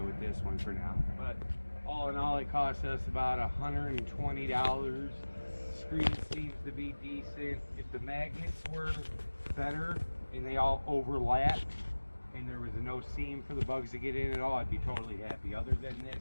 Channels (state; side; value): inverted; both; correlation -1.00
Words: with this one for now. But all in all, it cost us about $120. Screen seems to be decent. If the magnets were better and they all overlap, and there was no seam for the bugs to get in at all, I'd be totally happy. Other than